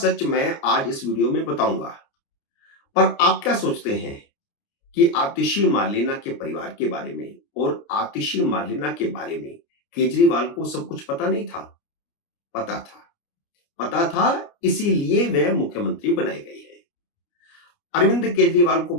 मैं आज इस वीडियो में बताऊंगा। पर आप क्या सोचते हैं कि आतिशी मार्लेना के परिवार के बारे में और आतिशी मार्लेना के बारे में केजरीवाल को सब कुछ पता नहीं था? पता था, इसीलिए वह मुख्यमंत्री बनाए गए हैं। अरविंद केजरीवाल को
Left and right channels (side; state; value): right; late; 29 ms